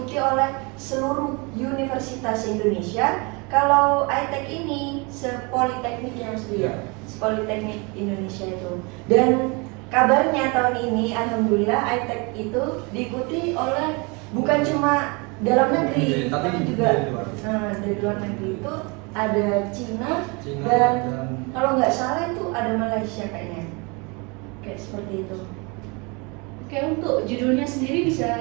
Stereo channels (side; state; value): left; quieter; 29.5 dB